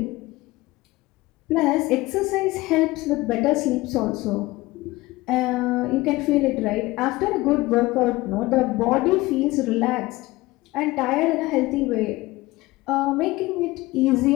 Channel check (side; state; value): right; quieter; 19.9 dB